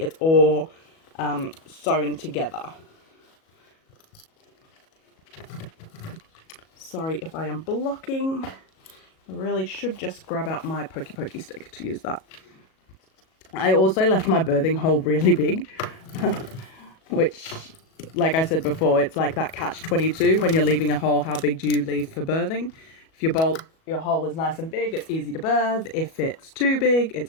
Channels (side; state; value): right; late; 37 ms